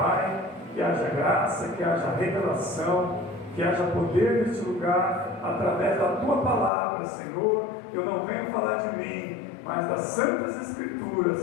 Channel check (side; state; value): right; drops out; at 6.7 s